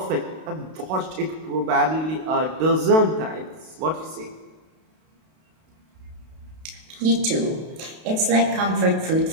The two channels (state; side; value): late; left; 32 ms